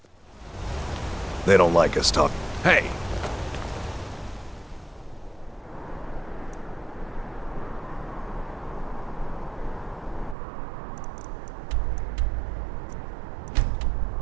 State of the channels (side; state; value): left; drops out; at 10.4 s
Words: They don't like us talking. Hey!